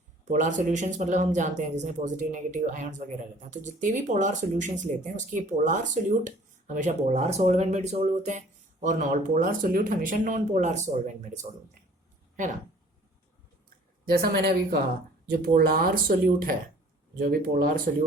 पोलार सॉल्यूशंस मतलब हम जानते हैं जिसमें पॉजिटिव नेगेटिव आयन्स वगैरह रहते हैं, तो जितने भी पोलार सॉल्यूशंस लेते हैं उसके पोलार सोल्यूट हमेशा पोलार सॉल्वेंट में डिसॉल्व होते हैं और नॉन पोलार सोल्यूट हमेशा नॉन पोलार सॉल्वेंट में डिसॉल्व होते हैं, है ना. जैसा मैंने अभी कहा, जो पोलार सोल्यूट है, जो भी पोलार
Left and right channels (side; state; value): both; normal; correlation 0.52